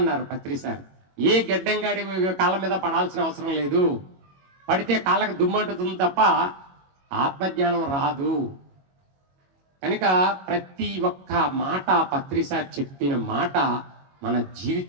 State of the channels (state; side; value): late; left; 22 ms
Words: పత్రి సార్. ఏ గడ్డంగాడి కాళ్ళ మీద పడాల్సిన అవసరం లేదు, పడితే కాళ్ళకు దుమ్మంటుతుంది తప్ప ఆత్మజ్ఞానం రాదు. కనుక ప్రతి ఒక్క మాట పత్రి సార్ చెప్పిన మాట మన